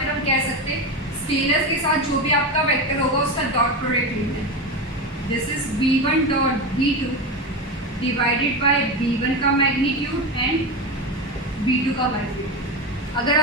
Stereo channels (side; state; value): both; normal; correlation 0.19